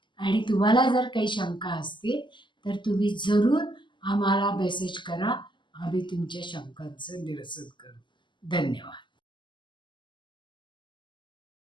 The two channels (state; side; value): late; right; 0.23 ms